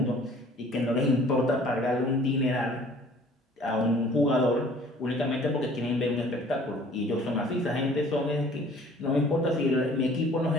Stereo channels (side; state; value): both; normal; correlation 0.52